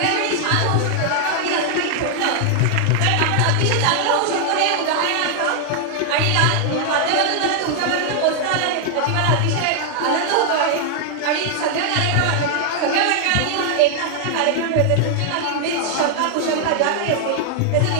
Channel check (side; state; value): both; different; correlation 0.00